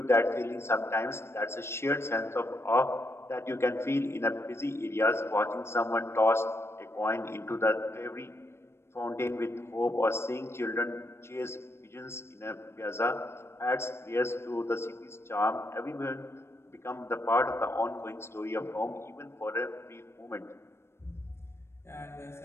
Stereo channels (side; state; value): right; late; 0.12 ms